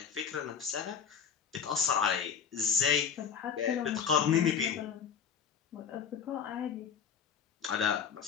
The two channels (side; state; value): right; quieter; 7.1 dB